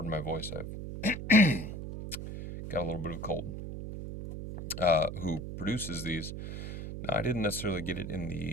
my voice, I've got a little bit of a cold, who produces these. Now, I didn't necessarily get it in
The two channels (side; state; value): right; noise; hum, 7 dB below the sound